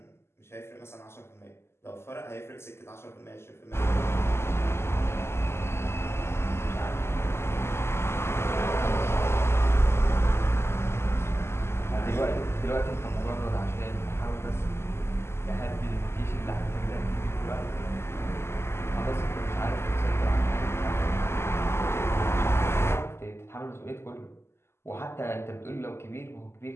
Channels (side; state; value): right; late; 0.12 ms